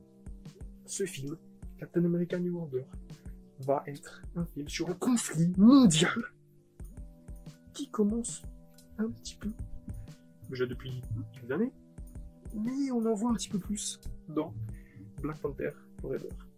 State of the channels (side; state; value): both; identical; correlation 1.00